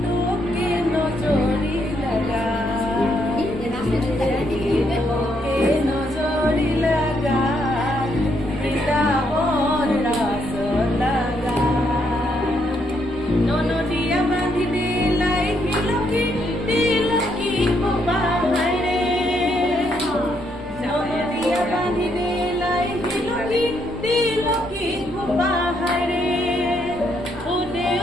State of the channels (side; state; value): both; normal; correlation 0.75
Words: নজৰি লাগা নজৰি লাগা বৃন্দাবন ৰাস লাগা ননদিয়া বান্ধি দিলাই তিলকি তিলকি খোপাহাৰে ননদিয়া বান্ধি দিলাই তিলকি তিলকি খোপাহাৰে ও